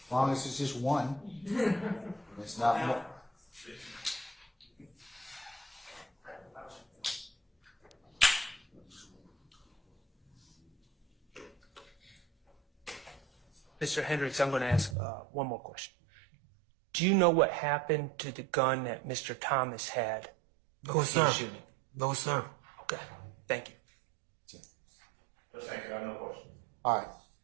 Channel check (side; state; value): left; drops out; at 15.0 s